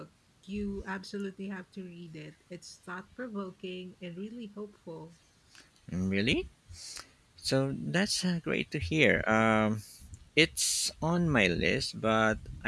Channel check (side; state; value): both; identical; correlation 1.00